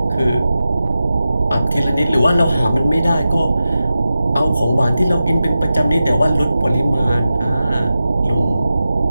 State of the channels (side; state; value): both; inverted; correlation -0.92